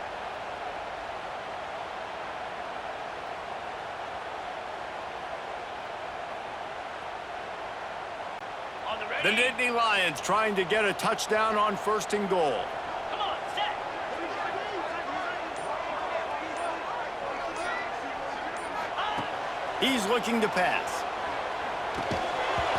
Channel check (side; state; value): both; identical; correlation 1.00